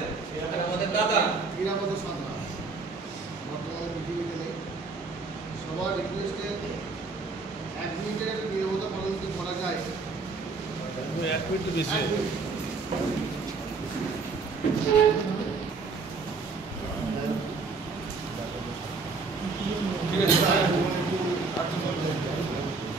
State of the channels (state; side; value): quieter; left; 4.3 dB